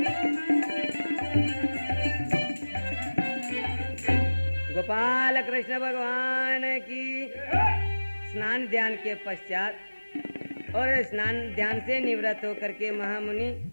गोपाल कृष्ण भगवान की। स्नान ध्यान के पश्चात और स्नान ध्यान से निवृत्त होकर के महामुनि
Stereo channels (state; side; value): inverted; both; correlation -1.00